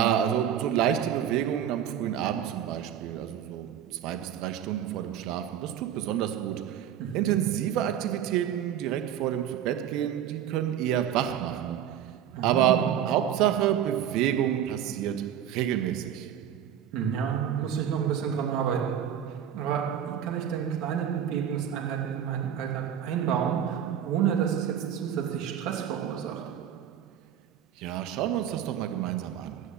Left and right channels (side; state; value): left; quieter; 9.7 dB